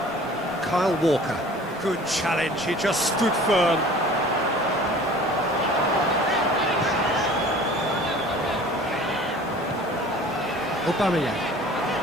Kyle Walker. Good challenge, he just stood firm. Aubameyang.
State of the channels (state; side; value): normal; both; correlation 0.46